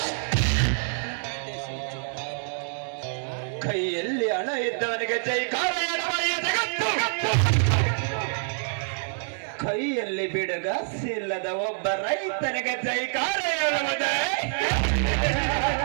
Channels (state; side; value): silent; left; digital silence